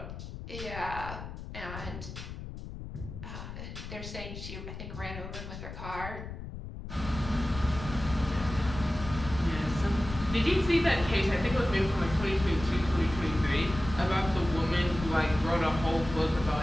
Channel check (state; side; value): noise; left; rumble, 10 dB below the sound